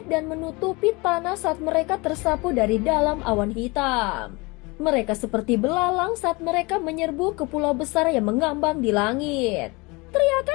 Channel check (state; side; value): quieter; right; 25.8 dB